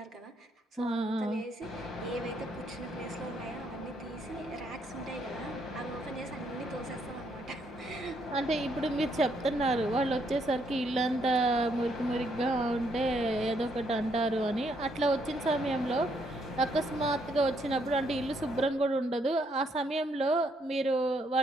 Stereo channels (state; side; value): normal; both; correlation 0.72